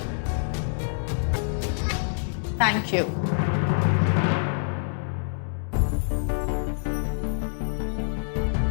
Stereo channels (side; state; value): right; silent; digital silence